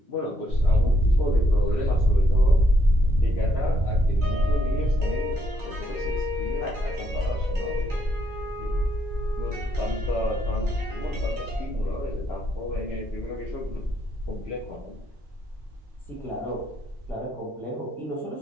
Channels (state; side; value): normal; both; correlation 0.74